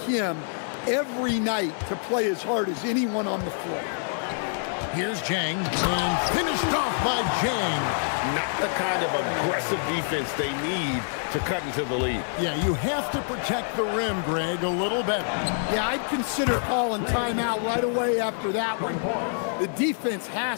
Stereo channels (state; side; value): silent; right; 58 dB below the other